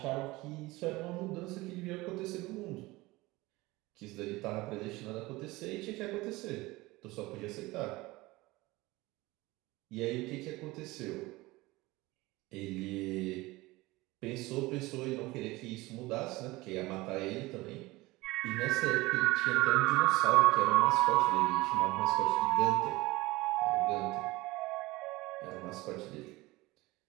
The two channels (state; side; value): quieter; left; 20.8 dB